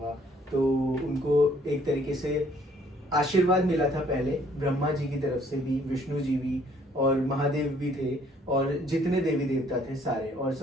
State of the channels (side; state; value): both; normal; correlation 0.62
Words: तो उनको एक तरीके से आशीर्वाद मिला था पहले ब्रह्मा जी की तरफ से भी, विष्णु जी भी, और महादेव भी थे, और जितने देवी देवता थे सारे। और